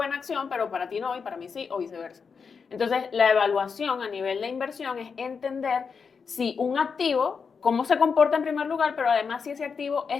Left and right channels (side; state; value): right; quieter; 5.7 dB